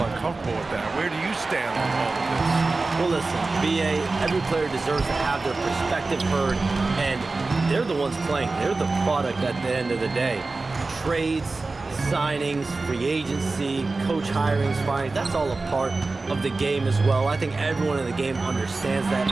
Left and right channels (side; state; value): left; quieter; 3.6 dB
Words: uncomfortable with that. Where do you stand on all of this? Well, listen, BA, every player deserves to have their perspective heard, and they're the ones playing. They're the product at the end of the day. Trades, signings, free agency, coach hirings, firings, that's all a part of the game as well. I think everyone in the game understands that.